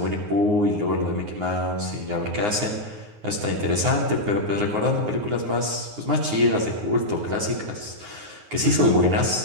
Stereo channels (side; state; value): left; late; 9.6 ms